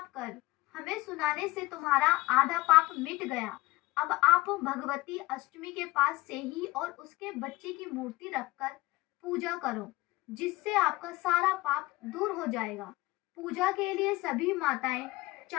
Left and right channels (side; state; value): right; quieter; 20.0 dB